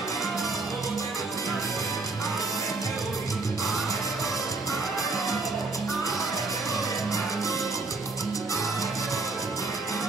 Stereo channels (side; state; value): left; quieter; 3.6 dB